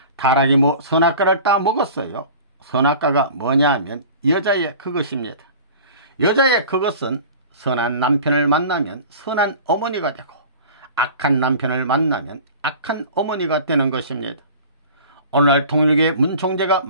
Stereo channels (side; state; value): both; inverted; correlation -0.41